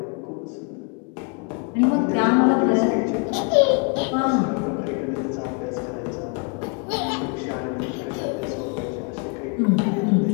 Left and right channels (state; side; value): quieter; right; 36.9 dB